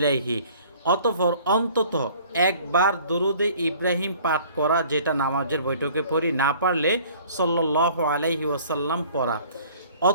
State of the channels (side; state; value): both; inverted; correlation -0.52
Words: অতঃপর অন্তত একবার দুরুদে ইব্রাহিম পাঠ করা, যেটা নামাজের বৈঠকে পড়ি, না পারলে সাল্লাল্লাহু আলাইহি ওয়াসাল্লাম পড়া।